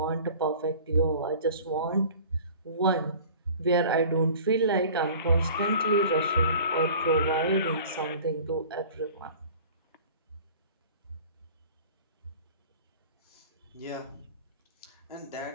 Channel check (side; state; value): both; inverted; correlation -0.44